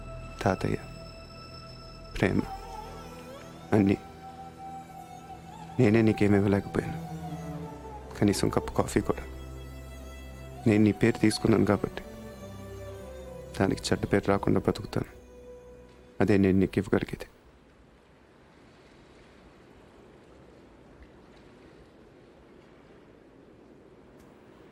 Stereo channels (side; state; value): both; identical; correlation 1.00